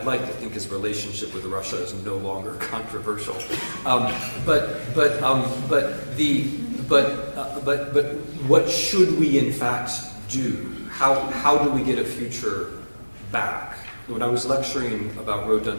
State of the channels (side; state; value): both; inverted; correlation -1.00